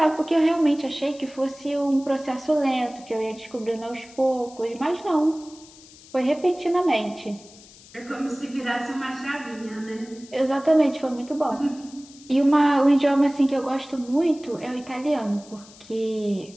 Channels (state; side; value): noise; left; hiss, 22 dB below the sound